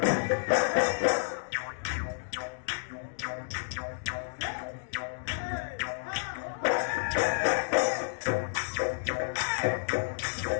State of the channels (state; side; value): silent; right; digital silence